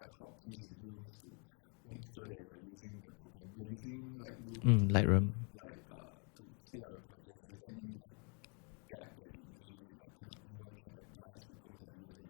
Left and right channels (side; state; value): right; quieter; 37.5 dB